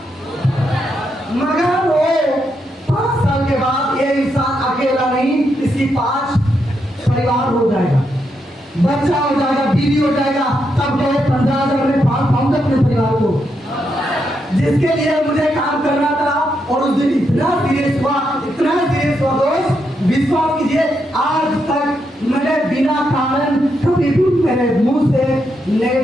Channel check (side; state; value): both; normal; correlation 0.81